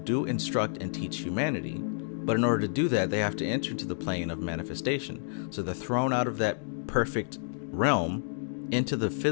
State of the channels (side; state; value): right; silent; digital silence